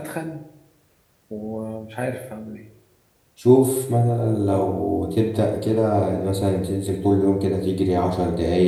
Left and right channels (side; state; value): both; identical; correlation 1.00